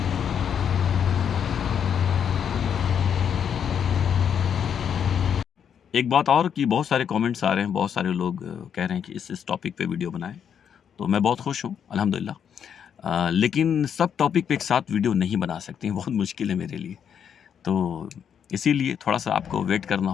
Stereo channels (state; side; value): quieter; right; 8.1 dB